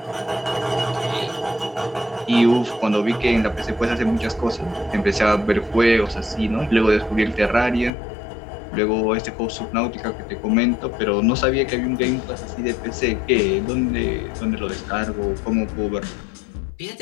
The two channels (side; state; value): right; drops out; at 7.9 s